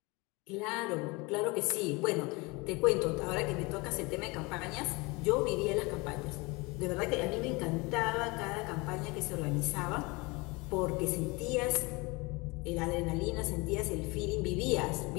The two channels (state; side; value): quieter; right; 25.7 dB